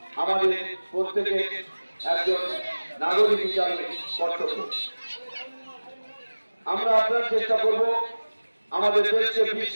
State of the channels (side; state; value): both; inverted; correlation -1.00